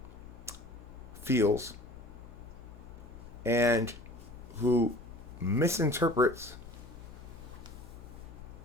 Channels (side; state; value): left; noise; hum, 17 dB below the sound